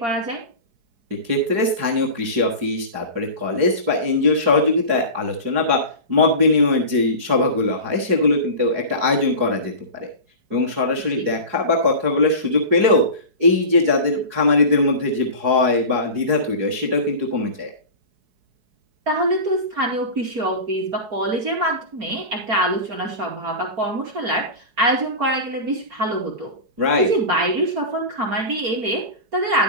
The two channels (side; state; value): left; late; 4.7 ms